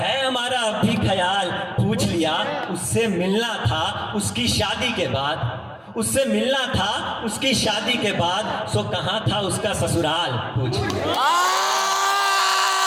हमारा अभी ख्याल पूछ लिया। उससे मिलना था उसकी शादी के बाद, उससे मिलना था उसकी शादी के बाद, सो कहाँ था उसका ससुराल पूछ लिया।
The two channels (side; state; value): both; identical; correlation 1.00